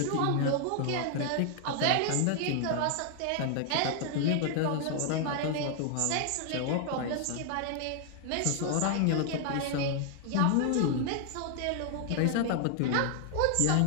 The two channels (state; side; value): different; both; correlation 0.00